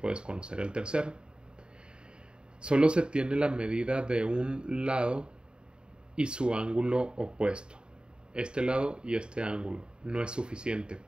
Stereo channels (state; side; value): late; left; 0.050 ms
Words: conocer el tercero. Solo se tiene la medida de un lado y su ángulo opuesto. Este lado y este ángulo no es suficiente.